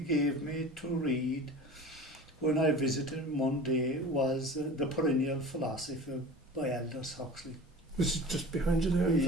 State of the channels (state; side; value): normal; both; correlation 0.37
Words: me to read when I visited him one day was The Perennial Philosophy by Aldous Huxley. This is just behind you there. in